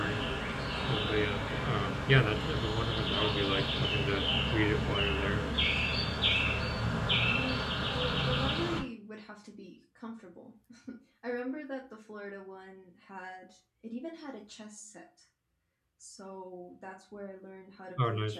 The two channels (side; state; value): both; identical; correlation 1.00